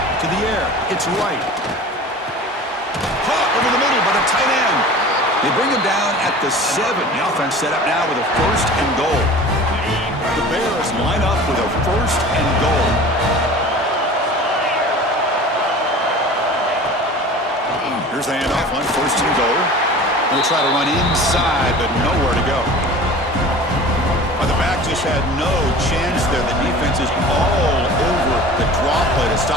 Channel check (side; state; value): both; normal; correlation 0.40